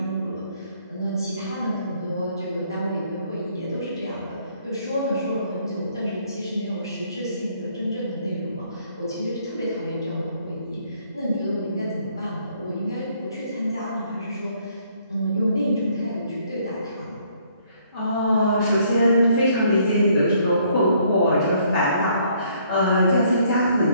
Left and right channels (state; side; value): inverted; both; correlation -0.66